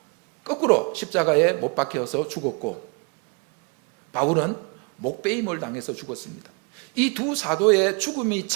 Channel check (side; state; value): left; quieter; 33.7 dB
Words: 거꾸로 십자가에 못 박혀서 죽었고 바울은 목베임을 당해서 죽었습니다. 이 두 사도의 죽음이